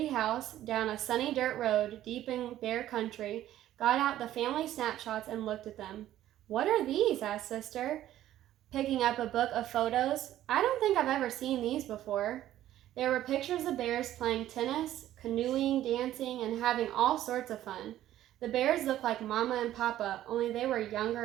house down a sunny dirt road deep in bear country got out the family snapshots and looked at them. "What are these?" asked Sister, picking up a book of photos. "I don't think I've ever seen these before." There were pictures of bears playing tennis, canoeing, dancing, and having all sorts of fun. The bears looked like Mama and Papa, only they were younger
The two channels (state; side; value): quieter; left; 13.0 dB